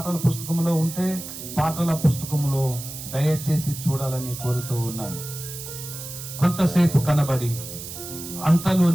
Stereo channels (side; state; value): right; noise; hiss, 10 dB below the sound